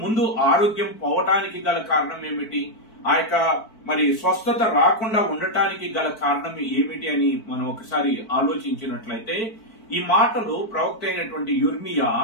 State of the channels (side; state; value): right; late; 4.5 ms